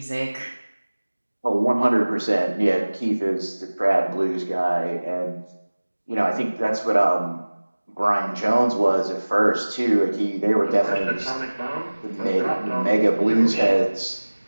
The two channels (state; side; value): inverted; both; correlation -1.00